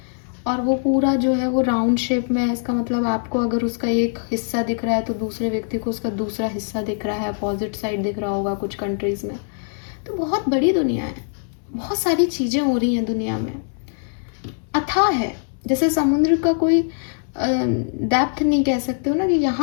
और वो पूरा जो है वो राउंड शेप में है। इसका मतलब आपको अगर उसका एक हिस्सा दिख रहा है तो दूसरे व्यक्ति को उसका दूसरा हिस्सा दिख रहा है, अपोजिट साइड दिख रहा होगा कुछ कंट्रीज़ में। तो बहुत बड़ी दुनिया है, बहुत सारी चीज़ें हो रही हैं दुनिया में, अथाह है। जैसे समुद्र का कोई डेप्थ नहीं कह सकते हो ना कि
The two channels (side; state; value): right; silent; 64 dB below the other